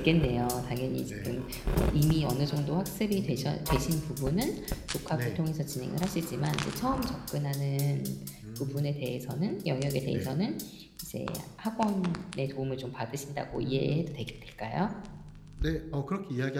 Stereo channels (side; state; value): both; identical; correlation 1.00